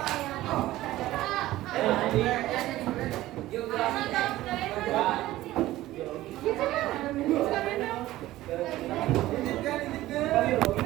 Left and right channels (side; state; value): left; quieter; 16.0 dB